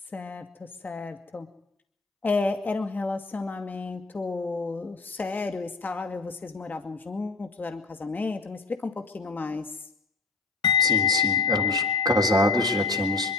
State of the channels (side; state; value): right; quieter; 3.8 dB